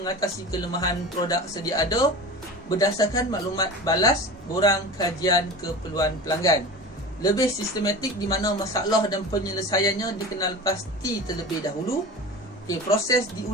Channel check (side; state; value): both; normal; correlation 0.33